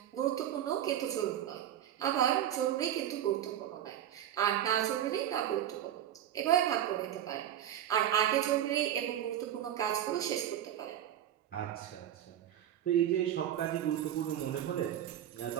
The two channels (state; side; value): quieter; left; 10.9 dB